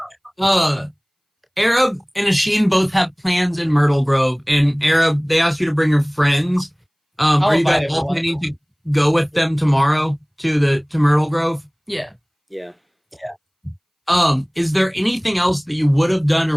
Arab and Asheen both have plans in Myrtle Grove, and Arab, they asked you to bring your friends. Are you guys all planning to go with them tomorrow to Myrtle Grove? Yeah. Yeah. Is there anything else that you would have done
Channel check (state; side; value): identical; both; correlation 1.00